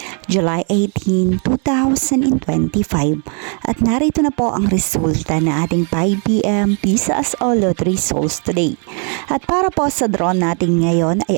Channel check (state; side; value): quieter; left; 39.0 dB